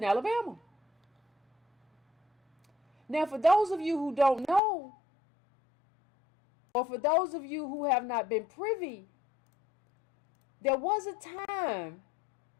Alabama. Now, for those of you who don't know, or for those of you who have not been privy, there was a time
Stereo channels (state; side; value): drops out; right; at 4.6 s